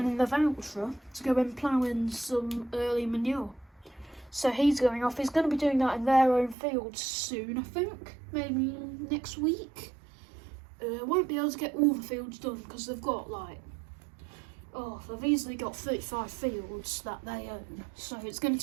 in the voucher to go and plough in some early manure. So he's going off. He's going to be doing that in their own fields soon, I think. Maybe next week. Won't be able to get all the fields done because they've got they've easily got 35 fields that they own, so it's going to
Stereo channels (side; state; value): left; drops out; at 6.6 s